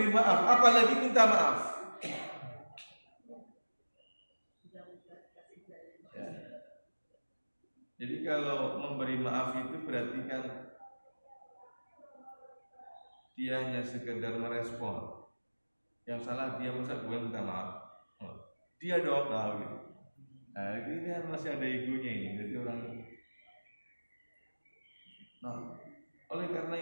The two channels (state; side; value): inverted; both; correlation -1.00